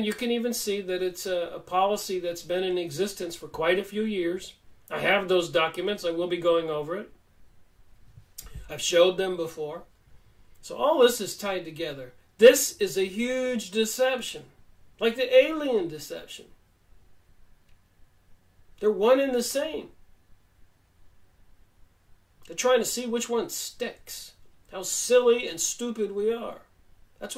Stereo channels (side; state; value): both; identical; correlation 1.00